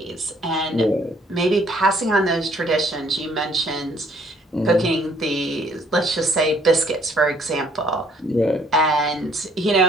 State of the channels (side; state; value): both; normal; correlation 0.62